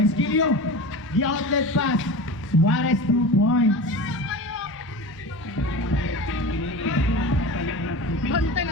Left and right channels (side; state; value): both; normal; correlation 0.31